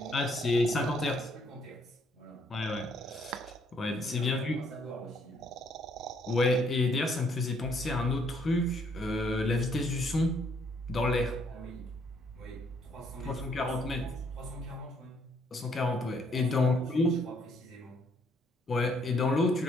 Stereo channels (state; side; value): normal; both; correlation 0.68